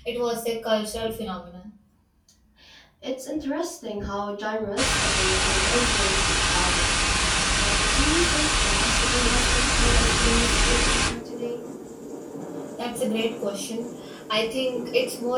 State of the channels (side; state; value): both; identical; correlation 1.00